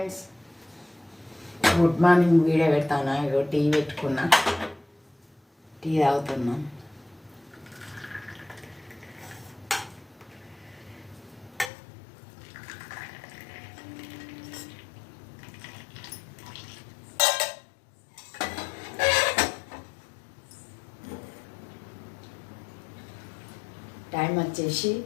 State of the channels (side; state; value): right; drops out; at 11.7 s